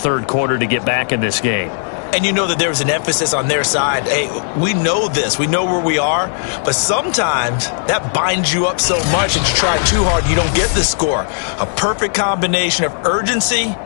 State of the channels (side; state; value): right; silent; digital silence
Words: quarter to get back in this game. And you know that there was an emphasis on their side. Hey, we know this. We know where we are. But sometimes that binds you up so much that you try too hard, you don't get the score. A perfect combination of urgency,